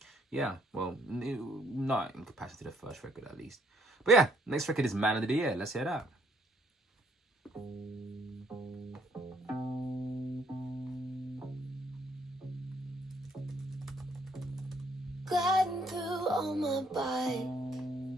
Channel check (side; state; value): both; normal; correlation 0.67